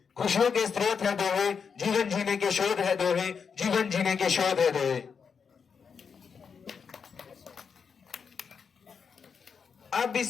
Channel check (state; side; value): quieter; right; 6.2 dB